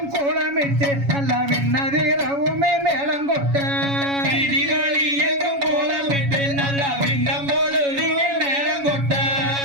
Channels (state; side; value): late; left; 7.2 ms